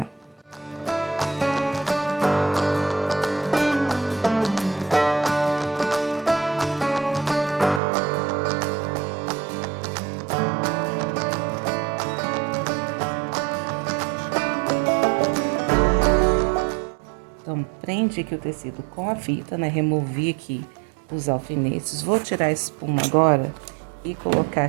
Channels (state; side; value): drops out; left; at 7.8 s